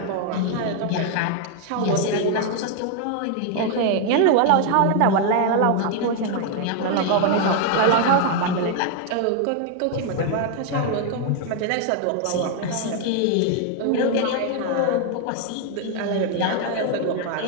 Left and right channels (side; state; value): both; different; correlation 0.00